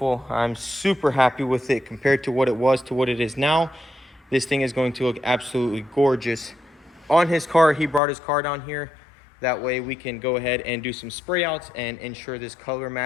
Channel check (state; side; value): drops out; right; at 8.0 s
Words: I'm super happy with it compared to what it was to what it is now. This thing is going to look absolutely gorgeous. On his car, he brought his car down here. That way we can go ahead and do some spray outs and ensure this color